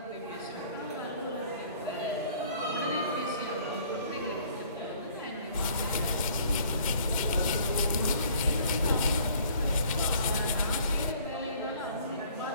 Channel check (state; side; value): inverted; both; correlation -0.56